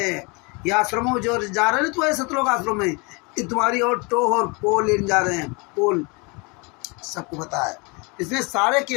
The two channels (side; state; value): right; quieter; 29.6 dB